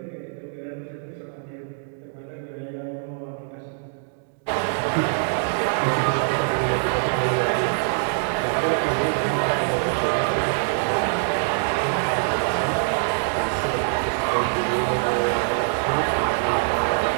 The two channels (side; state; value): left; silent; digital silence